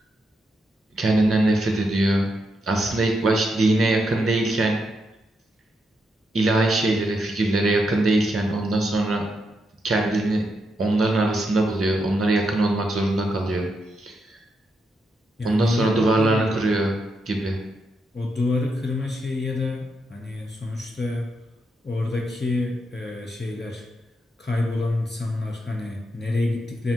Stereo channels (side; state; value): both; normal; correlation 0.82